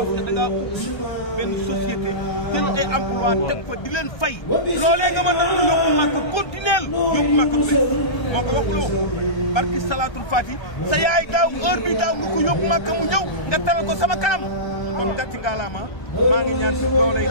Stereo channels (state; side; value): late; right; 1.3 ms